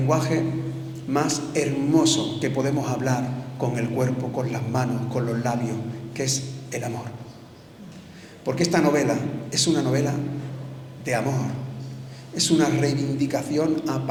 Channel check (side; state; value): both; identical; correlation 1.00